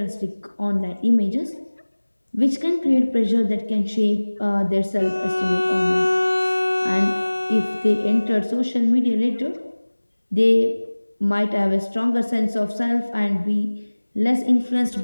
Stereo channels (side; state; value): both; inverted; correlation -1.00